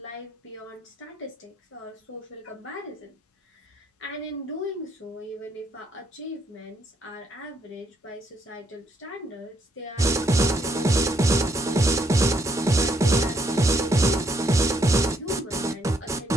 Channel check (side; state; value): both; normal; correlation 0.72